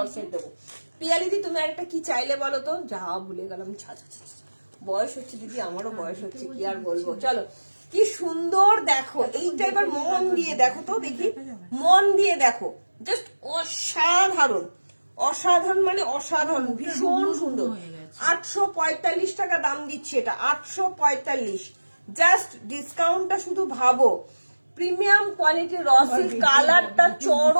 সেট দেবো। পিয়ালিদি তুমি আর একটা কি চাইলে বলো তো? যা ভুলে গেলাম, ছা ছা ছা ছা। বয়স হচ্ছে দিদি, আমারও বয়স হচ্ছে, কি আর বলবো। চলো কি সুন্দর দেখো, এইটা এবার মন দিয়ে দেখো তো, দেখি মন দিয়ে দেখো, জাস্ট অসাধারণ, অসাধারণ মানে অসাধারণ, ভীষণ সুন্দর। 845 টাকা দাম দিচ্ছে এটা, 845। জাস্ট ডিসকাউন্টটা শুধু ভাবো, প্রিমিয়াম কোয়ালিটির রসিল, কালারটা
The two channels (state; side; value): inverted; both; correlation -1.00